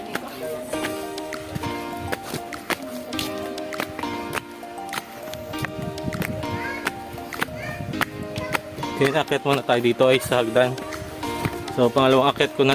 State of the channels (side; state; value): both; identical; correlation 1.00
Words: dito. Okay, akit muna tayo dito ay sa hagdan. So, pangalawang akit ko na